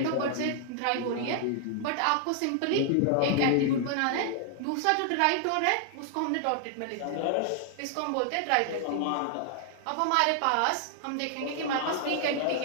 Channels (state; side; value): different; both; correlation 0.00